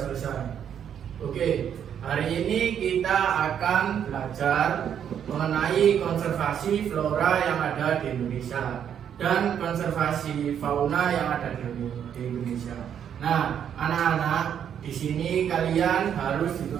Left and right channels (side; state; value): left; quieter; 8.8 dB